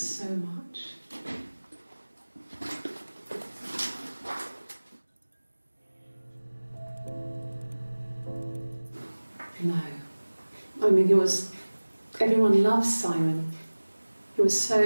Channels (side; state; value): both; inverted; correlation -1.00